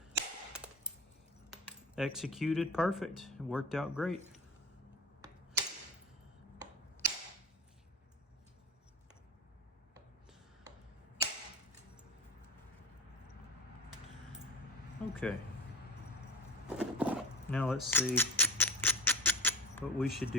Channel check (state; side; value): normal; both; correlation 0.26